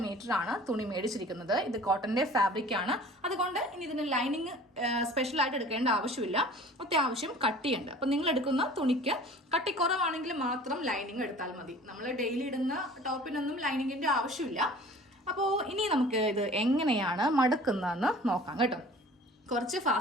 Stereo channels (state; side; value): normal; both; correlation 0.46